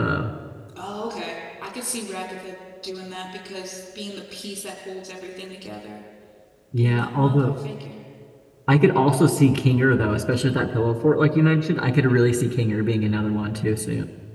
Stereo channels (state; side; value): identical; both; correlation 1.00